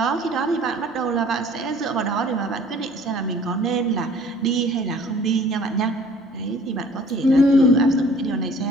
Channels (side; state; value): both; normal; correlation 0.52